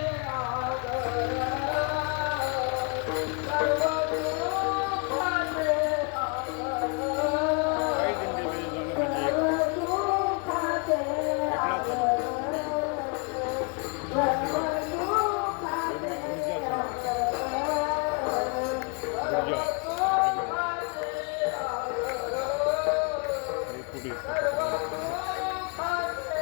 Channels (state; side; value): quieter; right; 34.5 dB